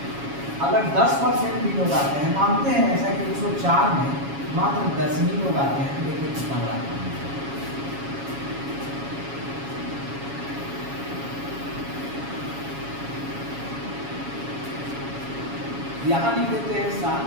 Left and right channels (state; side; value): late; left; 7.2 ms